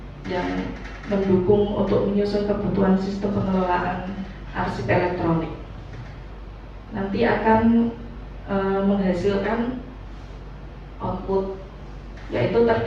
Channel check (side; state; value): both; identical; correlation 1.00